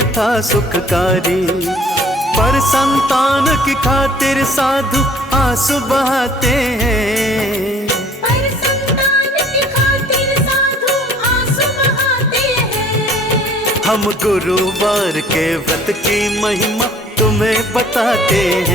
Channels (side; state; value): both; normal; correlation 0.55